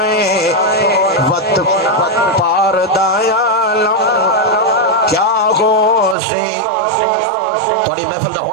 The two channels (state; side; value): drops out; left; at 6.2 s